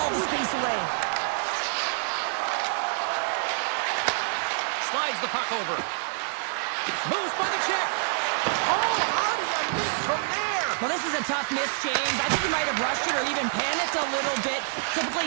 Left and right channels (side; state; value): left; silent; 58 dB below the other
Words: the space away. Slides the puck over. Moves by the check. Oh, how do you miss from there? Well, this is a tough miss, James. I think he might have rushed it or even panicked a little bit.